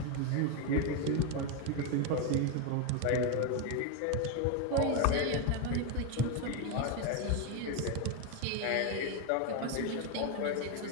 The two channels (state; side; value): different; both; correlation 0.02